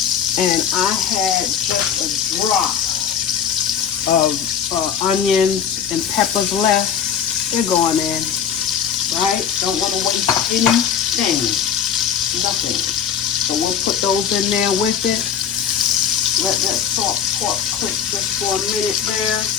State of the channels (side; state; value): right; quieter; 8.1 dB